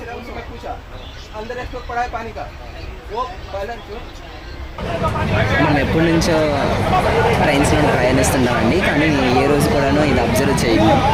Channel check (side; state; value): both; identical; correlation 1.00